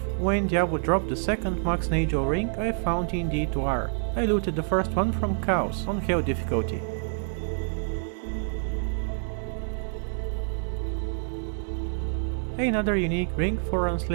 when Diablo dropped the second Max Nagel ring I found in D2R. I looted the first one from Chaos on Hell difficulty. Another unique ring 4 runs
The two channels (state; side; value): silent; left; 60 dB below the other